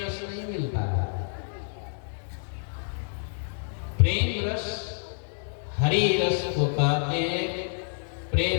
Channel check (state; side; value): silent; right; digital silence